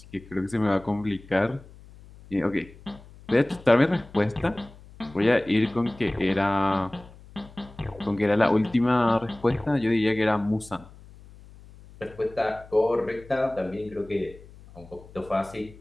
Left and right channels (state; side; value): noise; left; hum, 21 dB below the sound